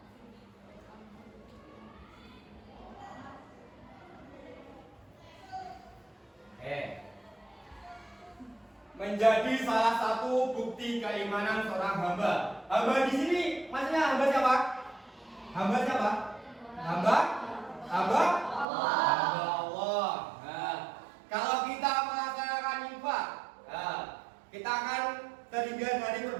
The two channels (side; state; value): left; drops out; at 18.7 s